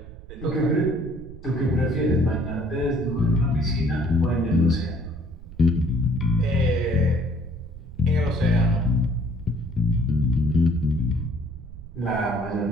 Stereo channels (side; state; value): right; noise; rumble, 15 dB below the sound